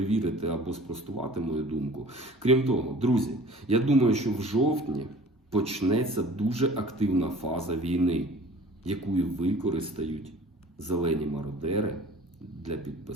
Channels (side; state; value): both; normal; correlation 0.46